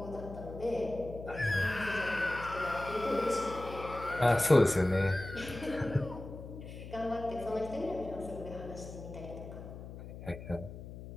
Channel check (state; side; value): noise; left; hum, 12 dB below the sound